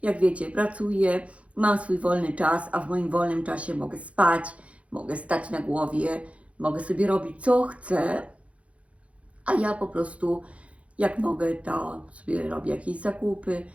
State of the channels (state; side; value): late; left; 0.063 ms